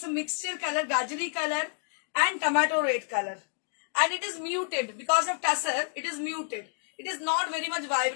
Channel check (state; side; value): silent; right; 56 dB below the other